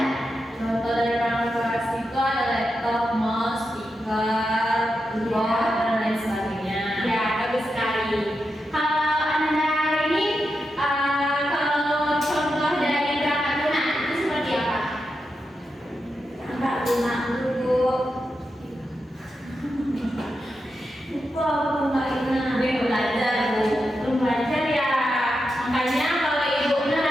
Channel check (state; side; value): normal; both; correlation 0.87